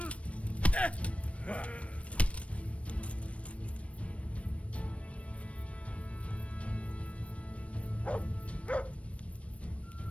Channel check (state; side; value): late; right; 0.063 ms